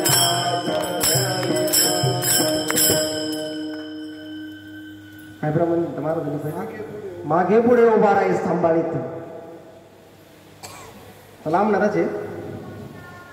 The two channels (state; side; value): identical; both; correlation 1.00